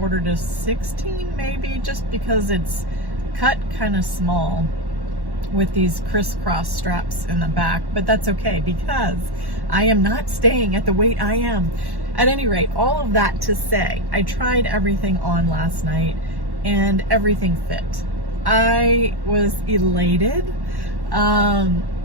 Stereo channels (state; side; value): late; left; 1.1 ms